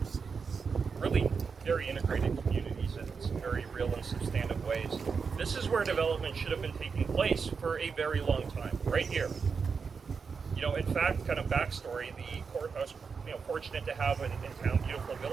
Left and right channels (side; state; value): left; quieter; 5.5 dB